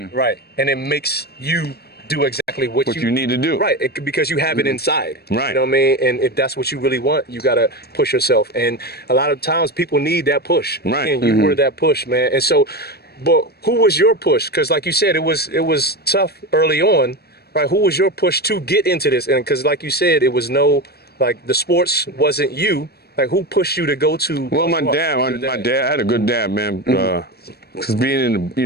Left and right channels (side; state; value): right; late; 0.46 ms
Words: And it makes you do exactly what you need to do. Right, because you have it inside. Right. You know what I mean? And if that's what you really want, you got to push yourself. And a lot of times people need that push. Right. And you were that push, man. And so, but who was your push? Because like you said, it was tough early on, right? Who was your push to get into this? And because like you said, it was the sports wasn't you. Like who pushed you to go to? Well, my dad, I had a good dad, man. Because being in